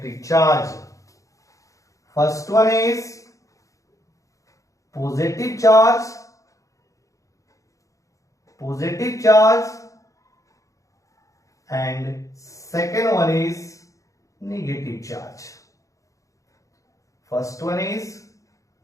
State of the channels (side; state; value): right; late; 0.16 ms